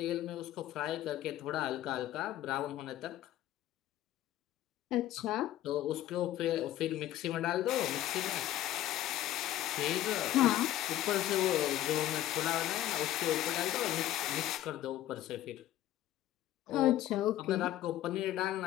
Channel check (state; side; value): quieter; right; 13.6 dB